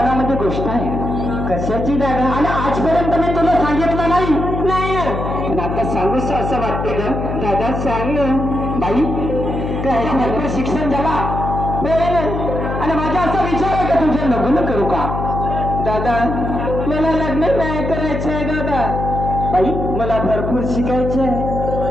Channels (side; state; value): left; noise; hum, 4 dB below the sound